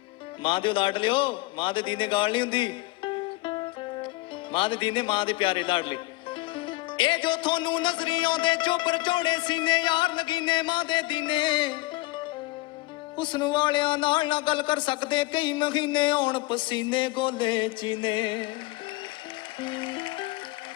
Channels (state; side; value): quieter; right; 20.4 dB